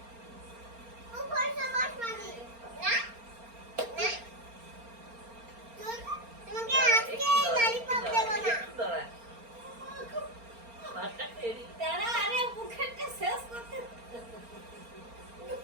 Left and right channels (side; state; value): left; late; 4.3 ms